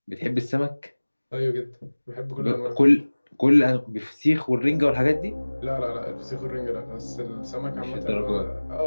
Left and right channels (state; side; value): inverted; both; correlation -1.00